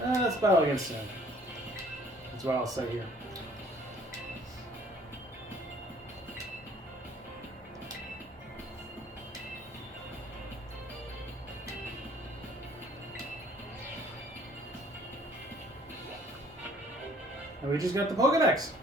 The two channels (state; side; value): normal; both; correlation 0.56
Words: Let's battle against him. That's what I'll say here. And we just got the Pokedex.